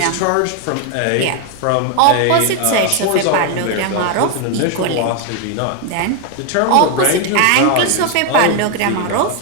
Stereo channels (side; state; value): both; different; correlation 0.01